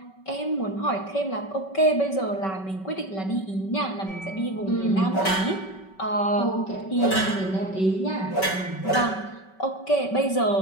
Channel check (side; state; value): right; late; 5.2 ms